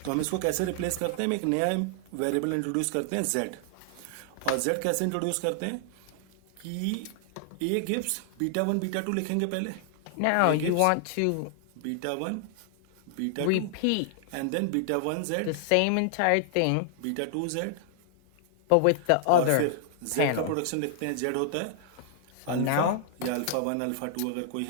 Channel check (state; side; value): different; both; correlation -0.01